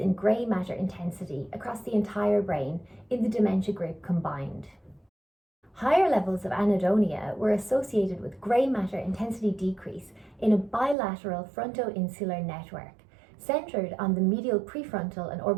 grey matter intensity across the entire brain in the dementia group combined. Higher levels of anhedonia were associated with grey matter intensity decrease in a bilateral frontoinsular network centred on the medial prefrontal and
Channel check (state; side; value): drops out; left; at 11.0 s